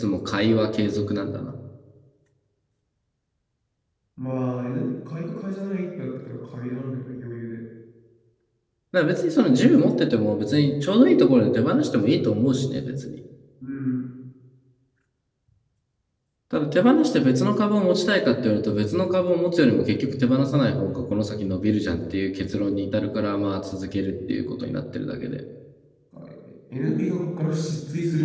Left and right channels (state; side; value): identical; both; correlation 1.00